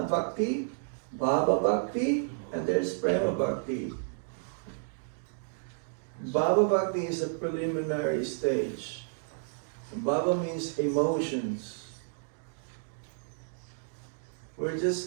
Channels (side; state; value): left; silent; digital silence